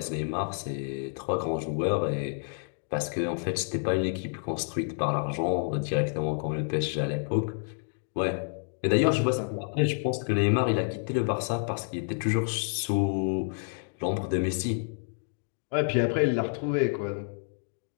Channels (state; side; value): silent; right; 56 dB below the other